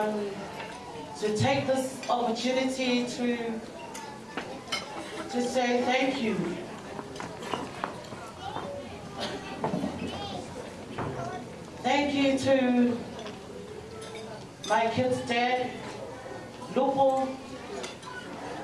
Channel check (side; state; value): both; identical; correlation 1.00